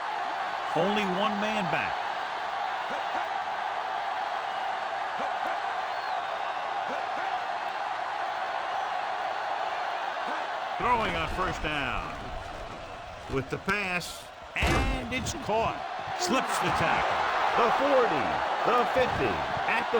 Only one man back. Throwing on first down. With the pass, and it's caught. Slips the tackle. The 40, the 50, at the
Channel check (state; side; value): identical; both; correlation 1.00